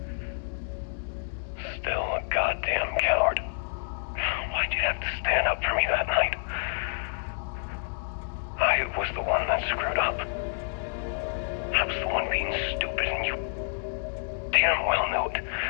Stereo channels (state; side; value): silent; right; digital silence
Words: Still a goddamn coward. Why'd you have to stand up for me that night? I was the one that screwed up. I was the one being stupid, and you damn well knew it.